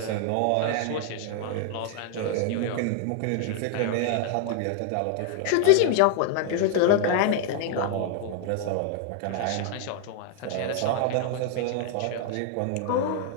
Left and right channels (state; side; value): different; both; correlation 0.00